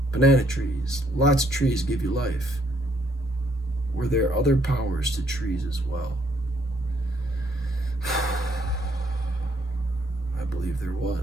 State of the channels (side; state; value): both; normal; correlation 0.69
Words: banana trees. Lots of trees give you life. Were there other powers to trees as well? I believe there